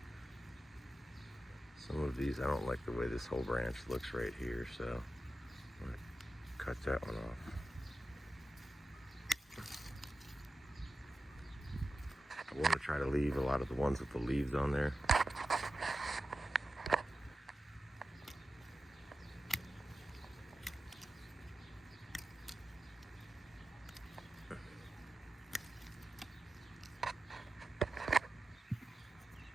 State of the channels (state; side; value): normal; both; correlation 0.92